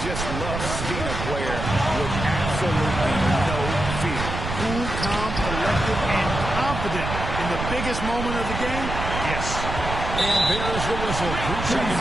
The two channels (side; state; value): right; noise; rumble, 5 dB below the sound